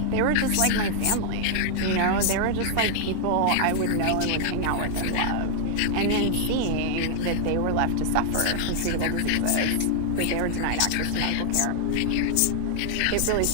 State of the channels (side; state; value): both; different; correlation 0.00